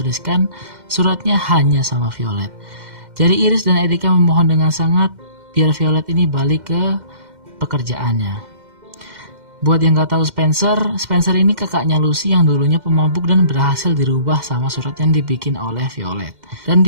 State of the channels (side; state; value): left; late; 2.1 ms